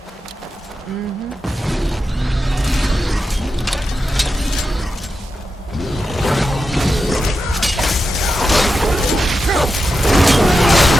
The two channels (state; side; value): normal; both; correlation 0.88